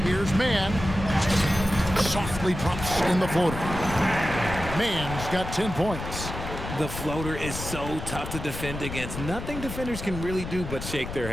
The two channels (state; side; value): noise; left; rumble, 8 dB below the sound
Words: Here's Mann. Softly drops in the floater. Mann's got 10 points. The floater is so tough to defend against. Nothing defenders can really do but shake their